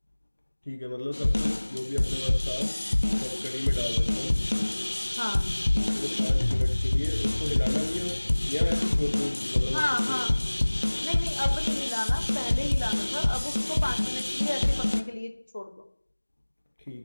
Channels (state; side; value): inverted; both; correlation -1.00